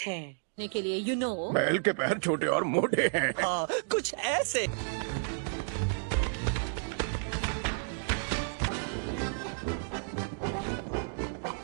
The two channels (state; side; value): silent; left; digital silence